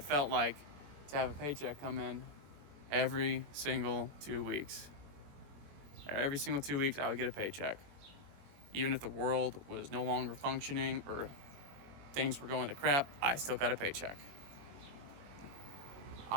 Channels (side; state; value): left; late; 21 ms